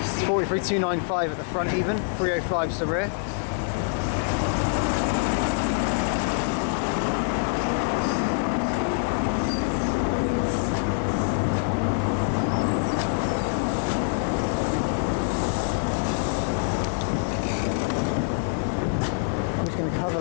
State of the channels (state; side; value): silent; right; digital silence